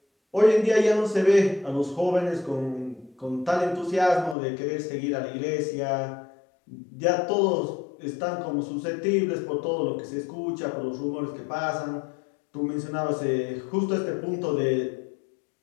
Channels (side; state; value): right; drops out; at 4.4 s